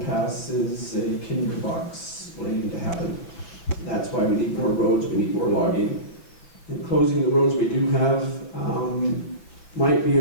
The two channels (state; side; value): late; right; 6.2 ms